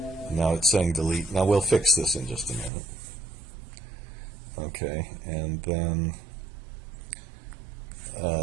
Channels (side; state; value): left; drops out; at 2.7 s